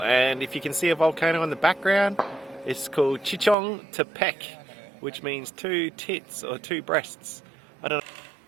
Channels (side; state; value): left; drops out; at 3.6 s